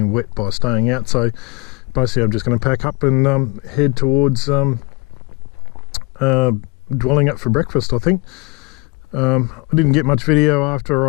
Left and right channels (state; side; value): quieter; right; 28.0 dB